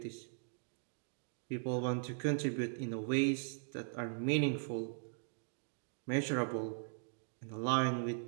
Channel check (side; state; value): left; silent; digital silence